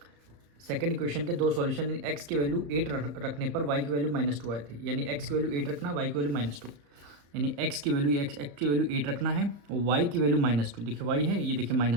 सेकंड इक्वेशन के दो सॉल्यूशन, x की वैल्यू 8 रखने पर y की वैल्यू -2 आई थी, यानी x की वैल्यू 8 रखना, y की वैल्यू -2, यानी x की वैल्यू 8 रखना है और y की वैल्यू -2, देखिए y है, ये देखिए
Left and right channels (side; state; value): left; late; 34 ms